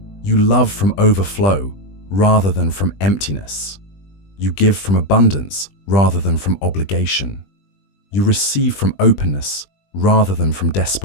You love from overflow rather than from emptiness. You give from abundance rather than from obligation. You receive from openness rather than from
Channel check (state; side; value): late; right; 20 ms